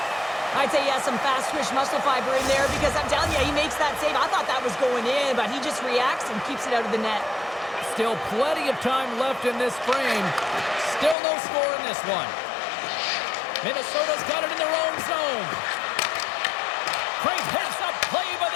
I'd say he has some fast-twitch muscle fiber in there because I'm telling you, he makes that save. I thought that was going in, but he just reacts and keeps it out of the net. Still plenty of time left in this frame. Still no score in this one. Minnesota's got it in their own zone. Great heads-up play by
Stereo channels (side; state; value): right; drops out; at 11.2 s